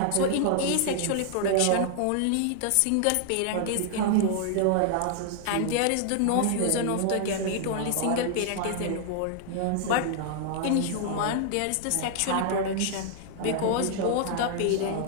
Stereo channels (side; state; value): both; different; correlation -0.01